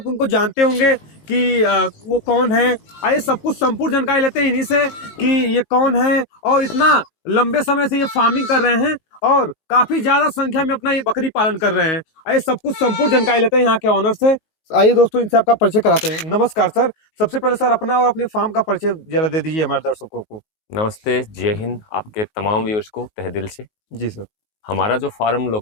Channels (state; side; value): late; right; 19 ms